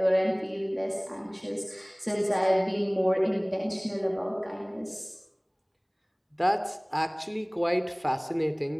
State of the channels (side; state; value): both; identical; correlation 1.00